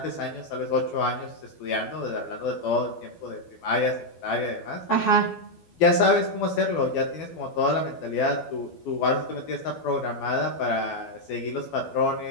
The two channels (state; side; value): late; right; 12 ms